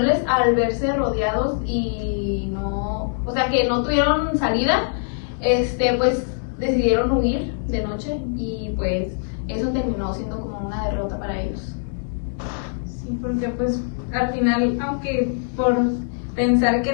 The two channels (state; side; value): silent; right; digital silence